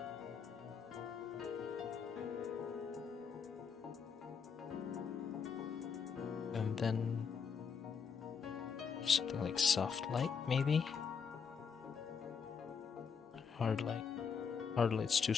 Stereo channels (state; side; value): quieter; right; 6.1 dB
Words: And then something like soft light, maybe? Hard light. Hard light's too